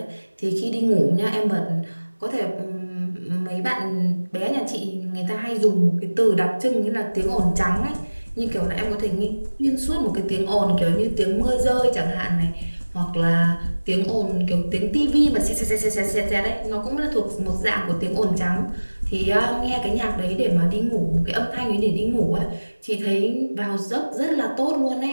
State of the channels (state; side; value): inverted; both; correlation -1.00